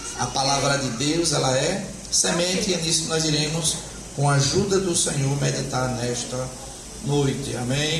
A palavra de Deus, ela é semente, e é nisso que nós iremos, com a ajuda do Senhor, meditar nesta noite. Amém,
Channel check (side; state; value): both; identical; correlation 1.00